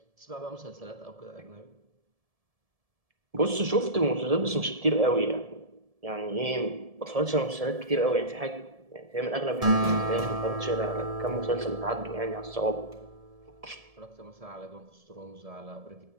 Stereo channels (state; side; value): late; left; 1.7 ms